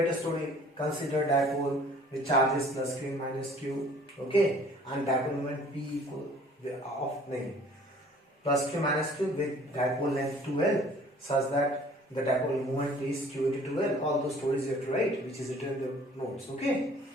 a story. Consider dipole with charges plus q minus q. Okay, and dipole moment p equal of plus q minus q with dipole length 2l such that the dipole moment is q into 2l. All those stories you have to write, which is written in the notes. Okay.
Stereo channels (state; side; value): normal; both; correlation 0.52